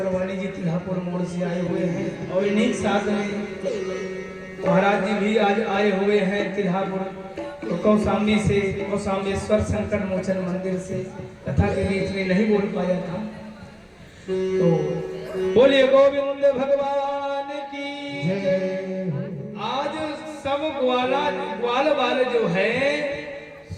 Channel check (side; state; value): both; identical; correlation 1.00